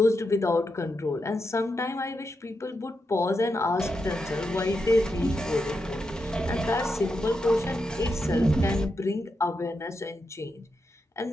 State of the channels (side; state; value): both; normal; correlation 0.86